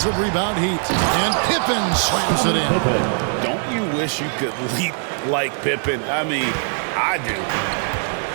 rebound heat. And Pippen slams it in. Don't you wish you could leap like Pippen? I mean, I do.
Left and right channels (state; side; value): silent; left; 56 dB below the other